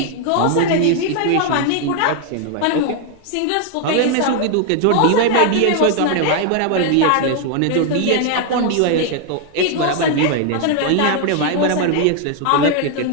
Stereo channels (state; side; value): different; both; correlation 0.00